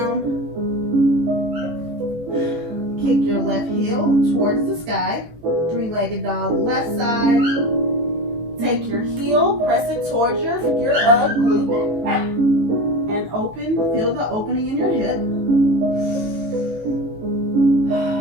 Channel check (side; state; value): left; late; 19 ms